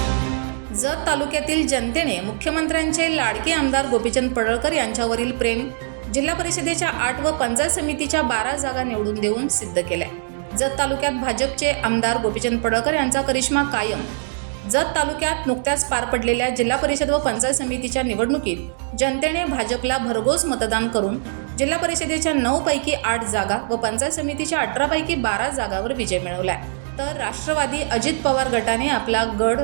जत तालुक्यातील जनतेने मुख्यमंत्र्यांचे लाडके आमदार गोपीचंद पडळकर यांच्यावरील प्रेम जिल्हा परिषदेच्या 8 व पंचायत समितीच्या 12 जागा निवडून देऊन सिद्ध केलाय। जत तालुक्यात भाजपचे आमदार गोपीचंद पडळकर यांचा करिश्मा कायम। जत तालुक्यात नुकत्याच पार पडलेल्या जिल्हा परिषद व पंचायत समितीच्या निवडणुकीत जनतेने भाजपला भरघोस मतदान करून जिल्हा परिषदेच्या 9 पैकी 8 जागा व पंचायत समितीच्या 18 पैकी 12 जागावर विजय मिळवलाय। तर राष्ट्रवादी अजित पवार गटाने आपला गड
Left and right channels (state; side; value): silent; left; digital silence